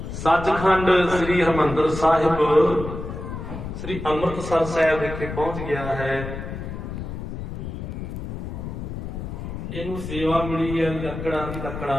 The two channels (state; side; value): noise; left; rumble, 7 dB below the sound